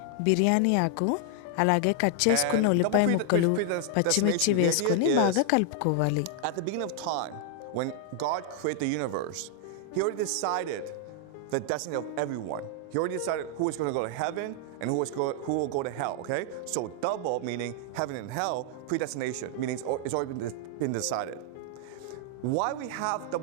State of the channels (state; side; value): different; both; correlation 0.00